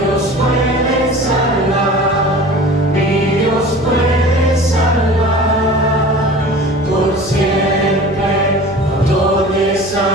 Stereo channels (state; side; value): noise; right; hum, 20 dB below the sound